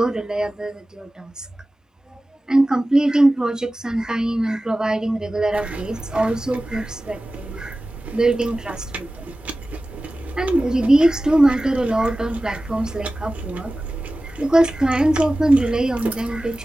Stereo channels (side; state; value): both; normal; correlation 0.96